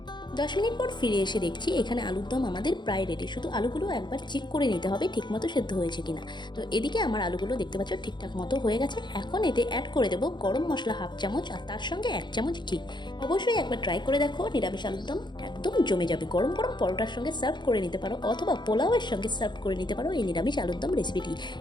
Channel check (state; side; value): late; right; 0.22 ms